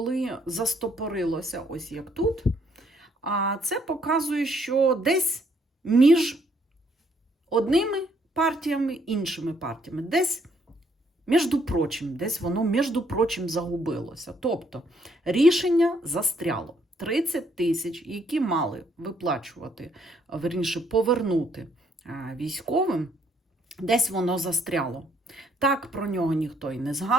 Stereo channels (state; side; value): normal; both; correlation 0.69